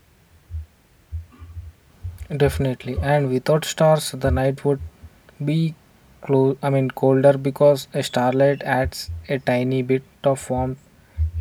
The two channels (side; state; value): both; identical; correlation 1.00